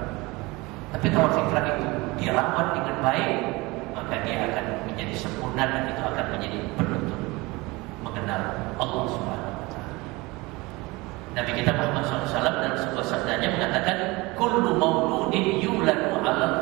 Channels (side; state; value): left; quieter; 23.1 dB